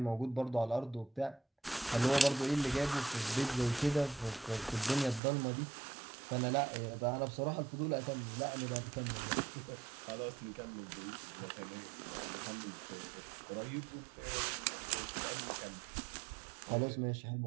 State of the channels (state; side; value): drops out; left; at 5.2 s